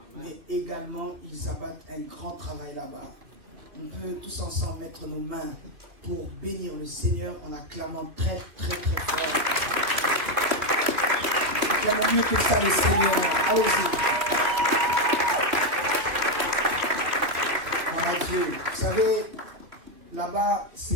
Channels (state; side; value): late; left; 2.6 ms